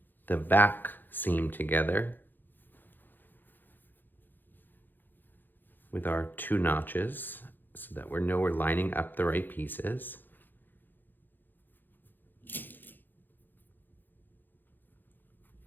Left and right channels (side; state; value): right; late; 0.091 ms